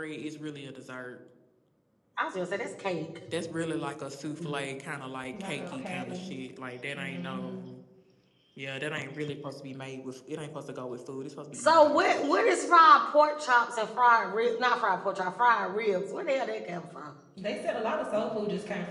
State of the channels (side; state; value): both; identical; correlation 1.00